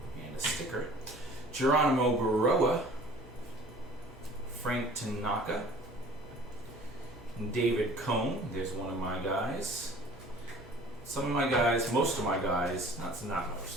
a sticker. Geronimo Baroa, Frank Tanaka, David Cohn. There's one of my guys. Some of my guys, most of my guys, not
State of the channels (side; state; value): both; normal; correlation 0.48